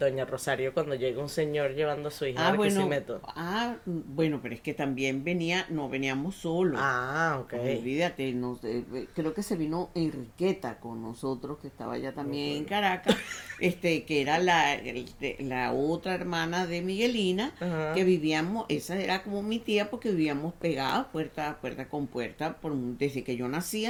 Rosario cuando llega un señor llevando a su hija a Barquisimeto? Bueno, pero es que también no veníamos solos. Ah, ok. Olvídate, creo que se vino Enriqueta con nosotros, que estaba ya también en Caracas, que era la otra hermana de Miguelina, Ajá. que vivíamos, esa era como mi tía, porque vivíamos pegadas puerta con puerta, desde que yo nací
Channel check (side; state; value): both; identical; correlation 1.00